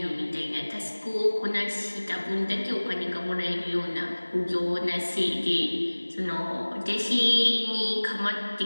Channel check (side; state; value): both; inverted; correlation -1.00